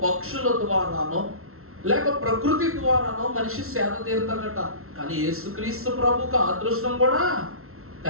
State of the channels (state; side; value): late; left; 0.62 ms